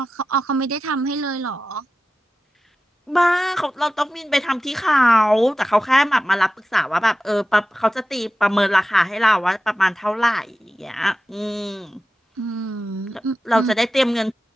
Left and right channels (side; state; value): both; normal; correlation 0.93